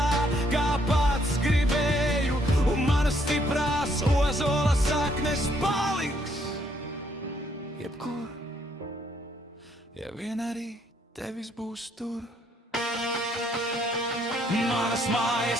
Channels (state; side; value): normal; both; correlation 0.70